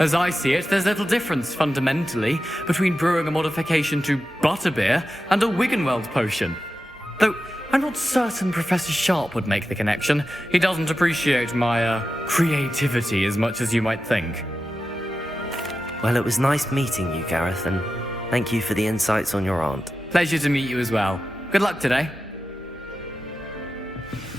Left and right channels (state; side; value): normal; both; correlation 0.91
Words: I see it, there's little difference, fundamentally, between brewing a modification to butterbeer and a Wiggenweld potion. Though, I'm not certain Professor Sharp would make the connection. He doesn't appreciate my, creativity as much as you might think. Well, it was nice meeting you, Gareth, and thank you for the insights on your aunt. Pleasure to meet you as well. Good luck today.